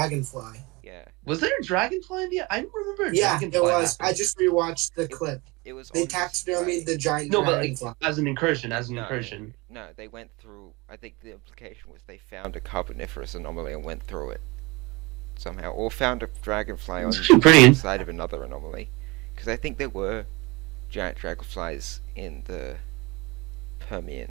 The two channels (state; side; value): quieter; left; 25.1 dB